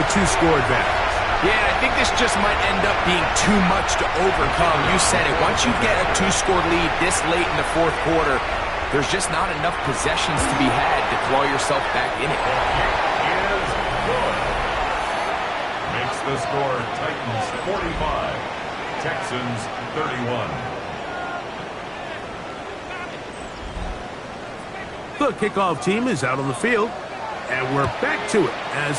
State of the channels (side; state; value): both; identical; correlation 1.00